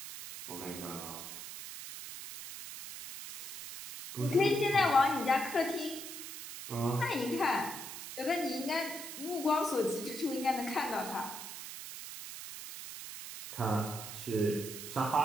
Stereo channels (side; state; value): right; noise; hiss, 9 dB below the sound